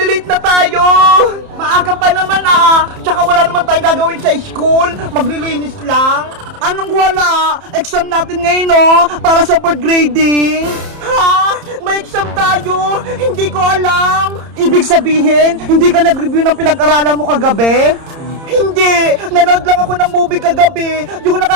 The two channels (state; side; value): late; left; 30 ms